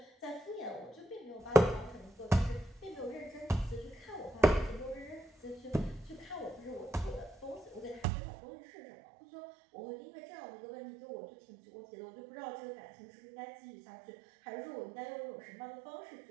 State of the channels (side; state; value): left; drops out; at 8.1 s